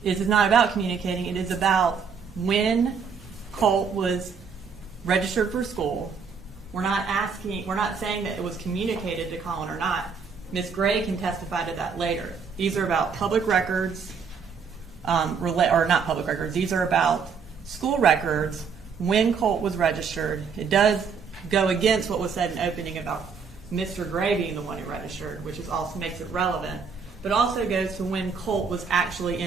is it's not about communicating, it is about when Colt was registered for school. We're not saying that it was communicated to Colin or not. Ms. Gray can testify to that later. These are about public records, or not public records, these are about school records when Colt was registered. It does go against what was said in opening about Mr. Gray being the one who registered, which is also makes it relevant, but also goes to when Colt was actually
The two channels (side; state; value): left; quieter; 5.9 dB